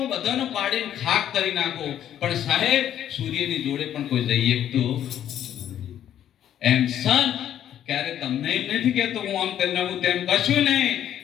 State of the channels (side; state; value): right; quieter; 10.6 dB